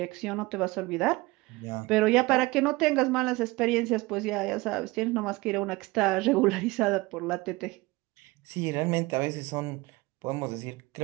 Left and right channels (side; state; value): left; quieter; 22.1 dB